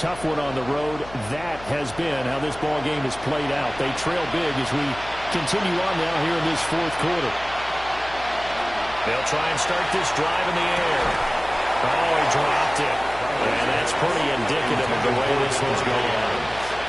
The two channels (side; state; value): left; noise; hum, 17 dB below the sound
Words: one on the road. That has been how this ball game has played out. They trail big as we continue on now here in this 4th quarter. They'll try and start this drive in the air. Oh, he dropped it. And that's pretty indicative of the way this one's going.